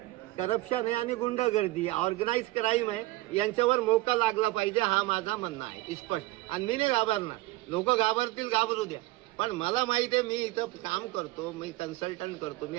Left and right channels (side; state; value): left; quieter; 18.9 dB